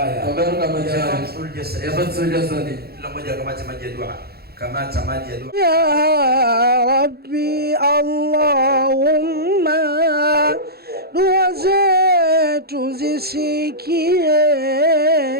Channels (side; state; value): left; late; 0.46 ms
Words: ya fathul jasadi, kila mmoja kamati maji ya dua. Ya Rabbi, Allahumma, dua zetu zisikie,